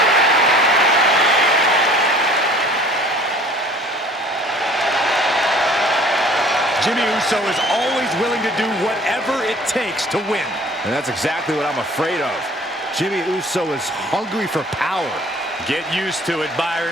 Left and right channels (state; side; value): normal; both; correlation 0.50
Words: Jimmy Uso is always willing to do whatever it takes to win. And that's exactly what I'm afraid of. Jimmy Uso is hungry for power. Get used to it,